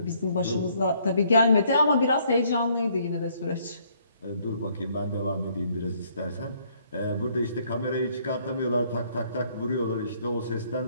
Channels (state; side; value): inverted; both; correlation -0.66